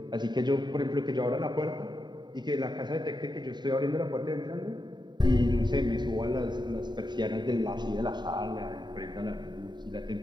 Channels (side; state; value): left; late; 0.21 ms